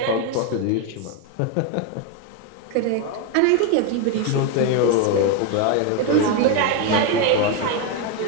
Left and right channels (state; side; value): different; both; correlation 0.02